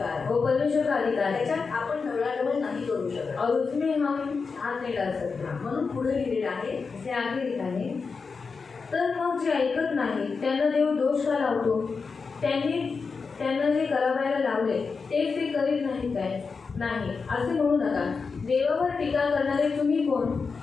आहे वो परमेश्वर का अधिकार है त्याच्यात आपण ढवळाढवळ नाही करू शकत और उसमें हम हाथ नहीं डाल सकते म्हणून पुढे लिहिलेलं आहे इसे आगे लिखा है तर मग जे ऐकत नाही त्यांना देव दोष का लावतो त्यांना जे करावयाला लावले तेच ते करीत नाही काय नाही असे म्हणू नका देवावर टीका करणारे तुम्ही कोण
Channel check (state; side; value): quieter; right; 4.9 dB